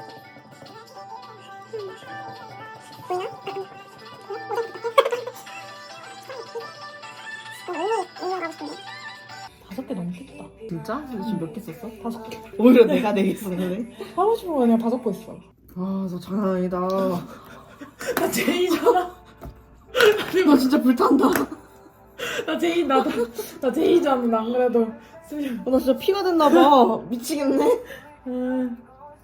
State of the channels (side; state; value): both; identical; correlation 1.00